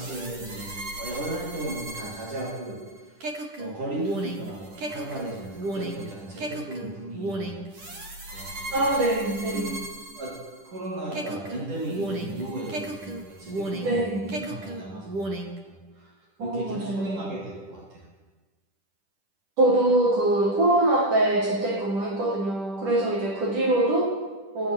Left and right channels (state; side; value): late; left; 10 ms